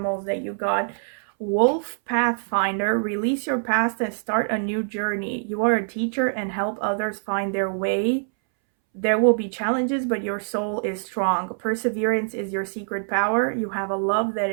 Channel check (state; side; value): silent; left; 62 dB below the other